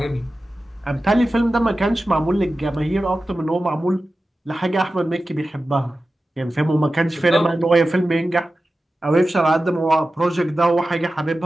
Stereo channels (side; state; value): both; normal; correlation 0.94